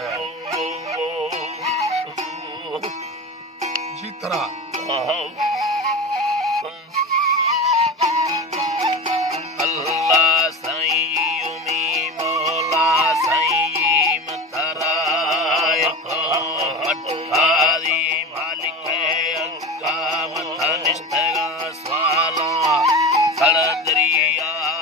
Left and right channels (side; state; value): both; normal; correlation 0.27